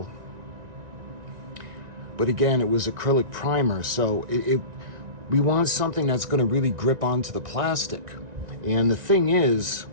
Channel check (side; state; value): left; late; 1.9 ms